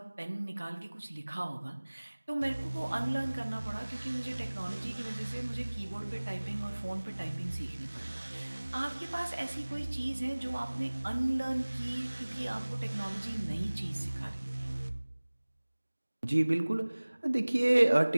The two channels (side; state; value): both; inverted; correlation -1.00